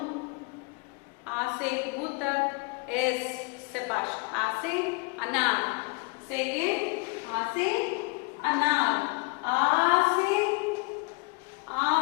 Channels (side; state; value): right; quieter; 30.4 dB